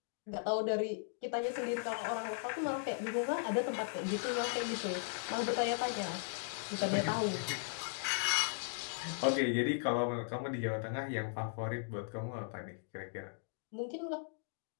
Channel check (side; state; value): right; silent; digital silence